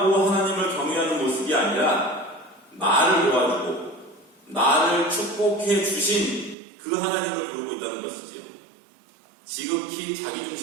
하나님을 경외하는 모습이 아니라 나를 도와주고 나를 축복해 주신 그 하나님을 부르고 있다는 것이지요. 지극히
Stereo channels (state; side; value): drops out; left; at 6.6 s